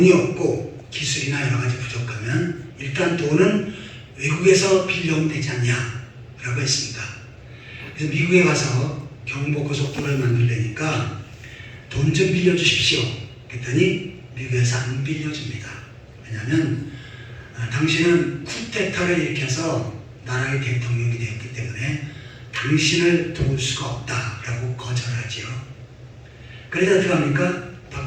없고 기술이나 여러 가지 부족하면 일단 돈은 외국에서 빌려오면 되지 않냐 라고 했습니다. 그래서 미국에 가서 경부고속도로를 만들려니까 돈 좀 빌려주십시오. 그랬더니 미국에서 안 빌려줍니다. 왜냐하면 당신은 쿠데타를 일으켜서 나라의 대통령이 되었기 때문에 당신을 도울 수가 없다라고 거절하지요. 그래서 어떻게 합니까?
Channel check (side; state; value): both; identical; correlation 1.00